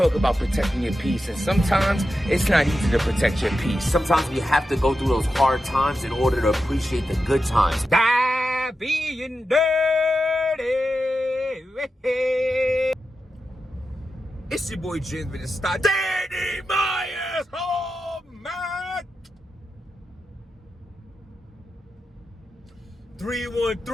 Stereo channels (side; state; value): both; normal; correlation 0.90